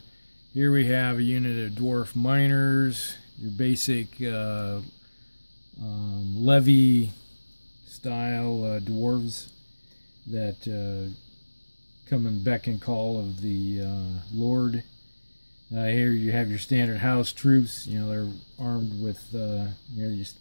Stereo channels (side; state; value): both; inverted; correlation -1.00